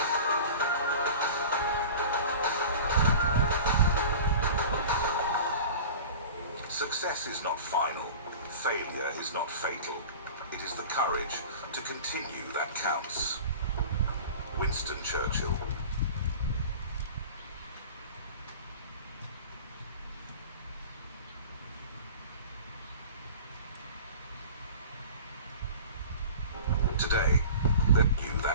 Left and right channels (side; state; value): both; inverted; correlation -0.38